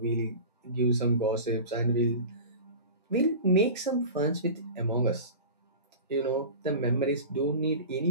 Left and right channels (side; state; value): both; inverted; correlation -0.34